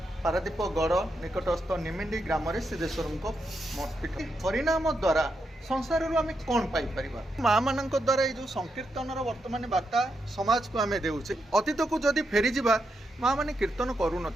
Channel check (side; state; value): both; normal; correlation 0.83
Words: पारादीप गढ़ निकटस्थ निमिंडी ग्राम सिद्धेश्वर मठपीठ हरिनाम द्वारा संसार आम कौन पाइपर माँ मान द्वारा ये जो संकीर्तन वर्तमान वार्ता समाज को आम देचे अतीत को जदि फेरी जावा माँ मैंने कीर्तन करूँ